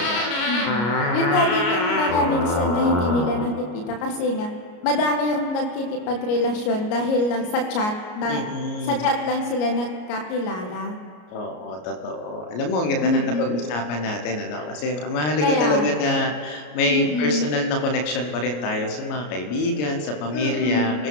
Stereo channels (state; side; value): late; right; 33 ms